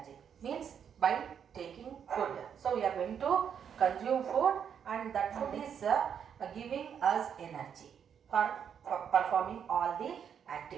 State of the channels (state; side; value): quieter; left; 7.9 dB